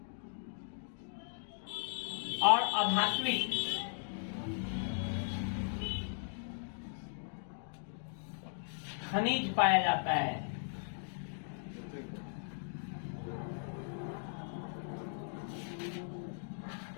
और अधात्विक खनिज पाया जाता है।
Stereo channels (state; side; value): silent; right; digital silence